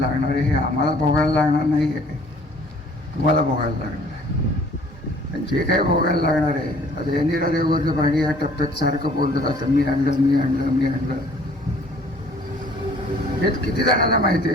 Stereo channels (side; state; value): both; normal; correlation 0.55